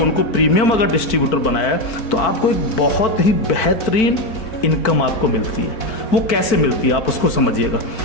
प्रीमियम अगर डिस्ट्रीब्यूटर बनाया, तो आपको एक बहुत ही बेहतरीन इनकम आपको मिलती है। वो कैसे मिलती है आप उसको समझिएगा।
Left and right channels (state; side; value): late; right; 4.5 ms